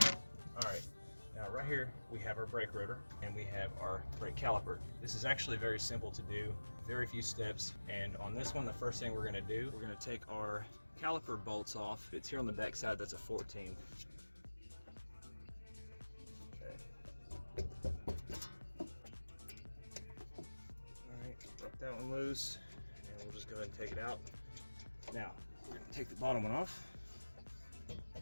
Alright, now right here we have our brake rotor and we have our brake caliper. This is actually very simple to do, very few steps, and on this one the first thing we're going to do, we're going to take our caliper bolts off. It's here on the back side, that's a 14. Okay. Alright, rip that one loose and we'll just go ahead and take it out. Now, we're going to take the bottom one off.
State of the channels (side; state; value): both; inverted; correlation -1.00